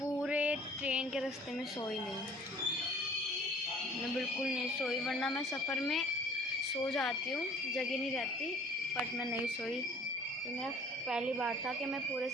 ट्रेन के रास्ते में सोई नहीं, मैं बिल्कुल नहीं सोई, वरना मैं सफ़र में सो जाती हूँ, जगह नहीं रहती, बट मैं नहीं सोई। ये मेरा पहली बार था कि मैं पूरे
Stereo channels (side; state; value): both; normal; correlation 0.53